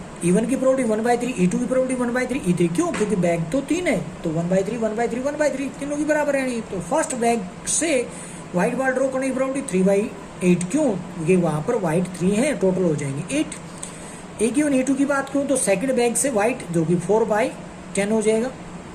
E1 की प्रोबेबिलिटी 1/3, E2 की प्रोबेबिलिटी 1/3, E3 क्यों? क्योंकि बैग तो 3 है, तो 1/3 1/3 1/3 तीनों की बराबर है। तो फर्स्ट बैग से व्हाइट बॉल ड्रॉ करने की प्रोबेबिलिटी 3/8 क्यों? क्योंकि वहां पर व्हाइट 3 है, टोटल हो जाएंगे 8। ए गिवन E2 की बात करूं तो सेकंड बैग से व्हाइट जो कि 4/10 हो जाएगा।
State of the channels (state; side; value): identical; both; correlation 1.00